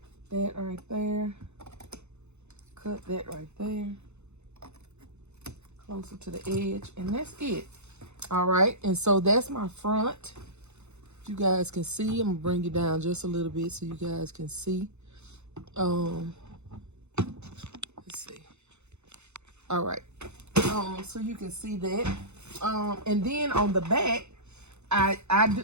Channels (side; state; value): left; late; 0.82 ms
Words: that right there. Cut that right there. Closer to the edge, and that's it. All right, and so that's my front. You guys can see. I'm gonna bring it down just a little bit so you guys can see. Let's see. All right, so you can see that. And then on the back, I